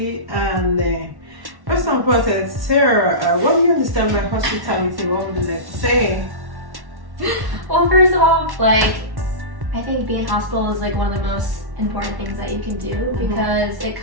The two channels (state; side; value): late; left; 1.1 ms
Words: and first and foremost, Sarah, what do you understand by hospitality? What would you like to say? Well, first of all, like, I think being hospitable is like one of the most important things that you can do, because it